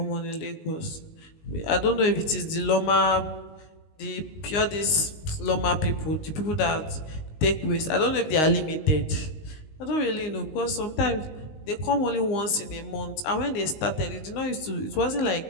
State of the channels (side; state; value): right; late; 19 ms